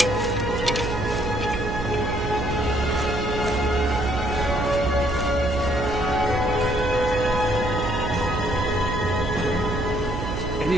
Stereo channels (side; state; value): right; noise; hum, 4 dB below the sound